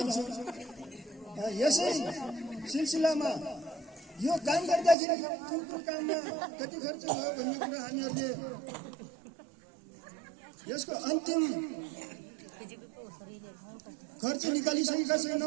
यसै सिलसिलामा यो काम गर्दाखेरि कुन काममा कति खर्च भयो भन्ने कुरा हामीहरूले यसको अन्तिम खर्च निकालिसकेका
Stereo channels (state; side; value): drops out; left; at 5.0 s